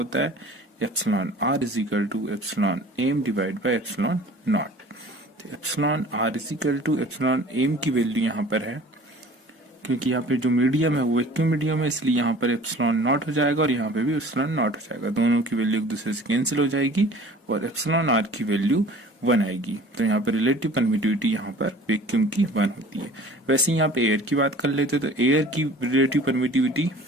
है epsilon are is equal to epsilon M divide by epsilon naught. तो epsilon are is equal to epsilon M की वैल्यू यहाँ पर है, क्योंकि यहाँ पे जो मीडियम है वो वैक्यूम मीडियम है, इसलिए यहाँ पर एप्सिलॉन नॉट हो जाएगा और यहाँ पे भी एप्सिलॉन नॉट हो जाएगा। दोनों की वैल्यू एक दूसरे से कैंसिल हो जाएगी और एप्सिलॉन आर की वैल्यू 1 आएगी। तो यहाँ पर रिलेटिव परमिटिविटी यहाँ पर वैक्यूम की 1 होती है। वैसे यहाँ पे एयर की बात कर लेते तो एयर की रिलेटिव परमिटिविटी,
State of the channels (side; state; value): both; normal; correlation 0.46